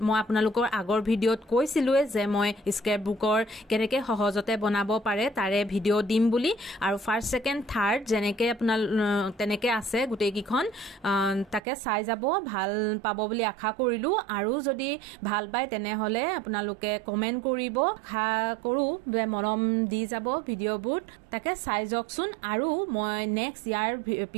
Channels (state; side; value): drops out; left; at 11.6 s